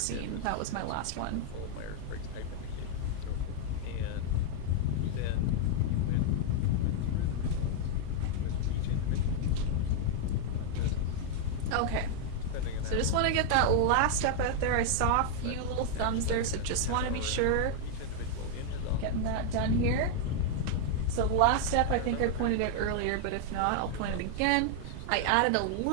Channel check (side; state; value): both; different; correlation 0.00